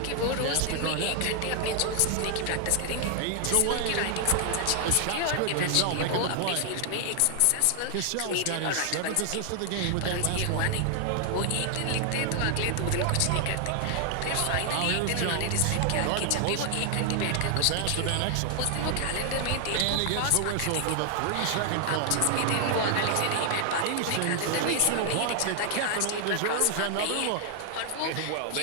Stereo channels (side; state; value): both; different; correlation 0.00